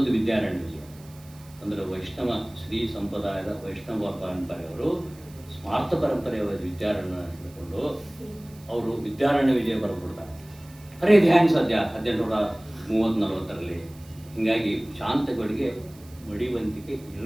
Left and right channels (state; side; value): noise; right; hiss, 24 dB below the sound